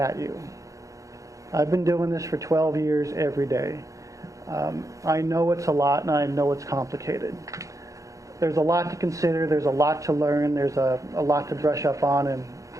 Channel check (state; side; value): late; left; 0.16 ms